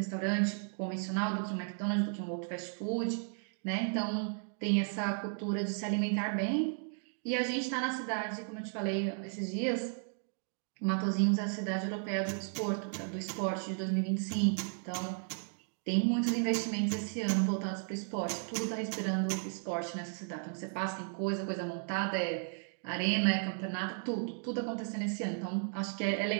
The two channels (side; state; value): left; silent; 55 dB below the other